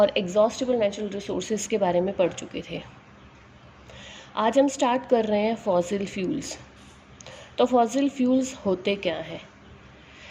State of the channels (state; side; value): identical; both; correlation 1.00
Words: एग्जॉस्टिबल नेचुरल रिसोर्सेज के बारे में पढ़ चुके थे। आज हम स्टार्ट कर रहे हैं फॉसिल फ्यूल्स। तो फॉसिल फ्यूल्स होते क्या हैं?